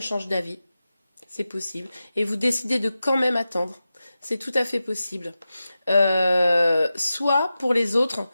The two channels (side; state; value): both; inverted; correlation -0.93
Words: change d'avis. C'est possible. Et vous décidez de quand même attendre. C'est tout à fait possible. Soit pour les autres